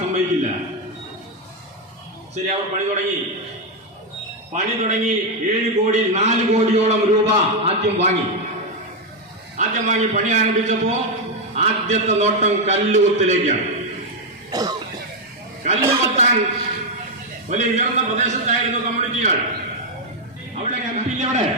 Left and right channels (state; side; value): normal; both; correlation 0.03